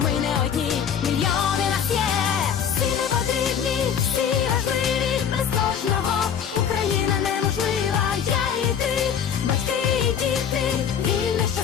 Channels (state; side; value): quieter; right; 8.0 dB